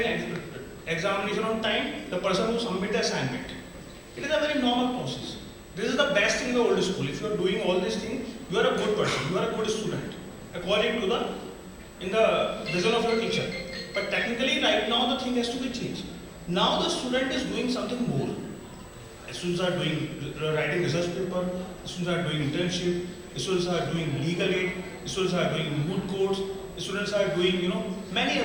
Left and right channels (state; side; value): identical; both; correlation 1.00